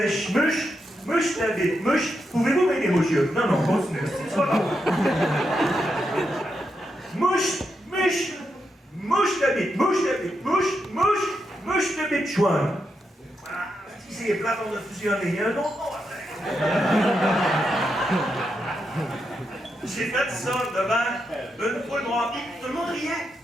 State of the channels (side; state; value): both; normal; correlation 0.84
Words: mouche ta bite, mouche. Pouvez-vous m'aider, monsieur? Non, continuez, c'est pas grave. Mouche ta bite, mouche ta bite, chouin. Ah, si c'est plate, on a fusionné, il y a un autre mot après. J'ai fait ça devant une foule noire, tout le monde riait.